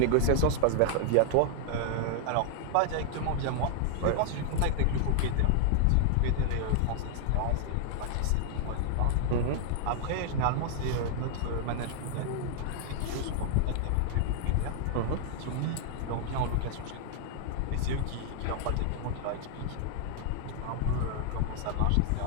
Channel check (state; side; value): different; both; correlation 0.00